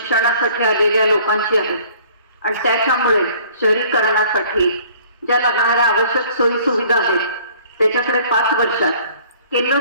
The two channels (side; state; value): both; inverted; correlation -0.54